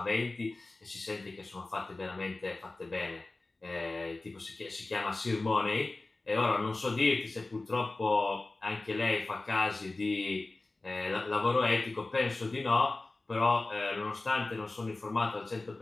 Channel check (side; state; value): right; quieter; 3.1 dB